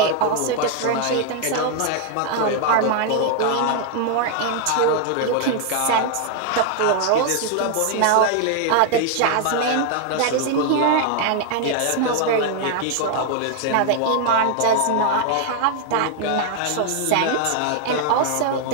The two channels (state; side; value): different; both; correlation 0.00